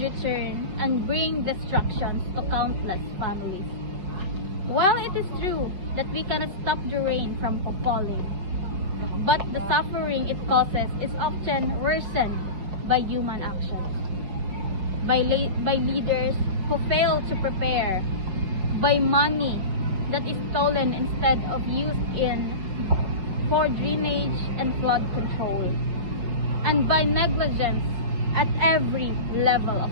return and bring destructions to countless families. While it is true that we cannot stop the rain from falling, but the suffering it causes is often worsened by human actions, by leaders who fail to prepare, by money that is stolen instead of used for drainage and flood control, and by negligence at every level of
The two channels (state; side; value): late; left; 5.3 ms